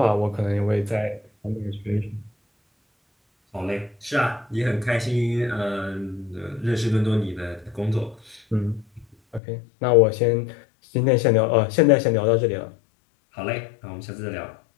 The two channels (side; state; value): right; drops out; at 9.4 s